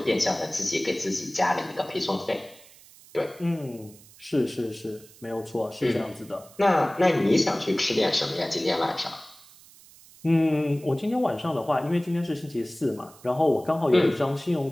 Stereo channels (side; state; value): right; noise; hiss, 23 dB below the sound